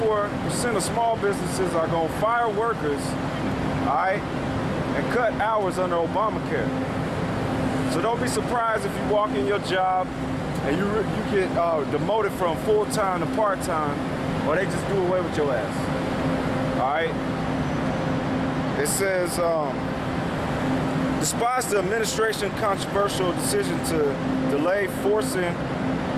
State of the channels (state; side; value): identical; both; correlation 1.00